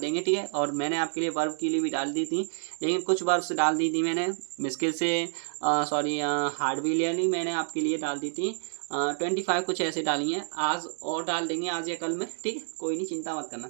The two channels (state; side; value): silent; left; digital silence